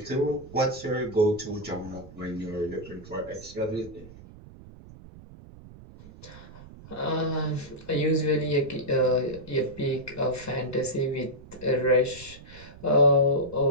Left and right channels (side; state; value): right; noise; rumble, 18 dB below the sound